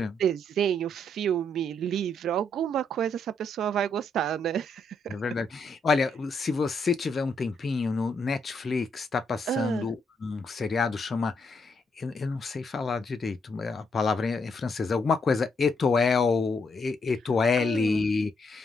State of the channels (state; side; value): normal; both; correlation 0.75